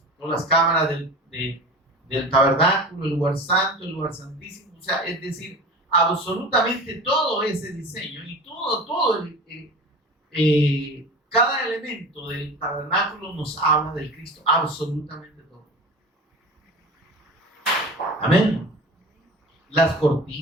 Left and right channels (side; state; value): both; normal; correlation 0.35